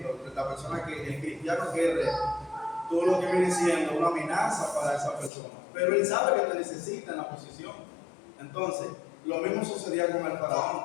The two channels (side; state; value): right; drops out; at 5.3 s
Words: la persona el cristiano que es recto, tú lo que viene siendo una amenaza para esa persona. Pero él sabe que te necesita en la posición. Entonces, lo mismo sucedía con el